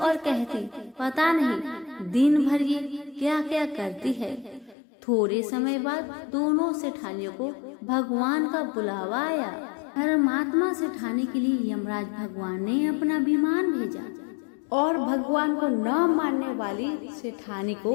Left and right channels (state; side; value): drops out; right; at 4.8 s